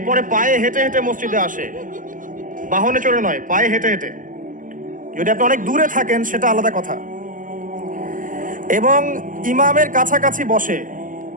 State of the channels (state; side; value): late; left; 0.38 ms